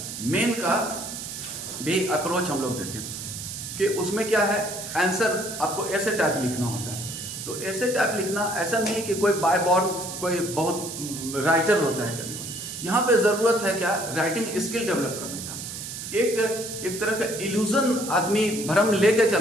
मेन का भी अप्रोच हम लोग देखें कि उसमें क्या है, आंसर आपको ऐसे टाइप लिखना होता है। तो ऐसे टाइप लिखना ऐसा नहीं है कि कोई बाय बॉर्न कोई बहुत राइटर होता है। यहाँ पे ज़रूरत है क्या, राइटिंग स्किल डेवलप करने का। एक तरह का इल्यूजन आदमी भ्रम लेके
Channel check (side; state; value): right; noise; hiss, 8 dB below the sound